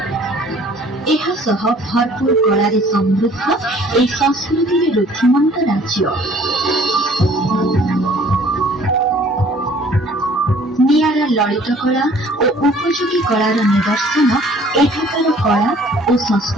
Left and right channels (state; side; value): normal; both; correlation 0.55